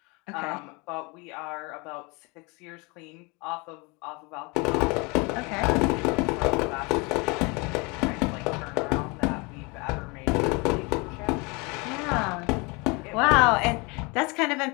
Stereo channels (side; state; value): right; quieter; 28.2 dB